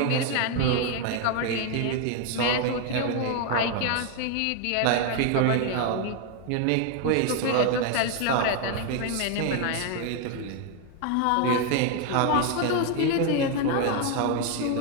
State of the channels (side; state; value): both; different; correlation 0.01